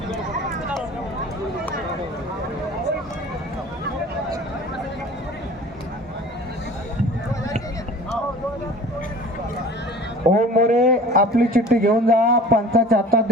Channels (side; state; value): both; normal; correlation 0.43